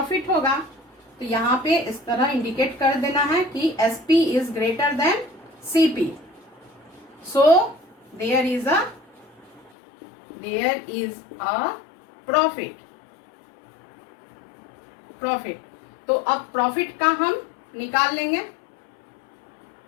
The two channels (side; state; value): right; drops out; at 9.7 s